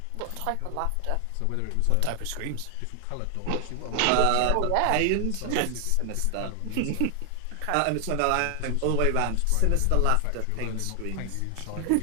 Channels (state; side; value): different; both; correlation 0.00